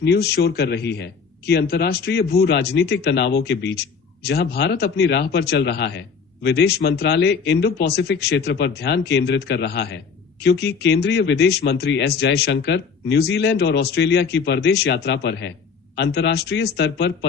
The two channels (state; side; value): quieter; right; 5.7 dB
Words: न्यूज शोर कर रही है कि अंतर्राष्ट्रीय भू राजनीतिक तनावों के बीच जहां भारत अपनी राह पर चल रहा है, विदेश मंत्रालय इंडो पैसिफिक क्षेत्र पर ध्यान केंद्रित कर रहा है, क्योंकि केंद्रीय विदेश मंत्री एस जयशंकर न्यूजीलैंड और ऑस्ट्रेलिया की परदेश यात्रा पर है। अंतर्राष्ट्रीय स्तर पर